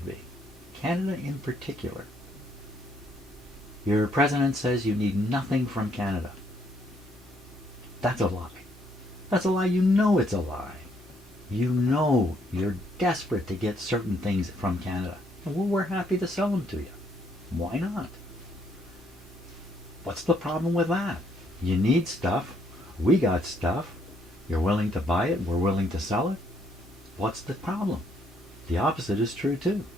be. Canada in particular. Your president says you need nothing from Canada. That's a lie. That's a lie. You know it's a lie. You know you're desperate to get certain things from Canada. And we're happy to sell them to you. Why not? What's the problem with that? You need stuff. We got stuff. You're willing to buy it. We're willing to sell it. What's the problem? The opposite is true too.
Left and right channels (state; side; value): normal; both; correlation 0.70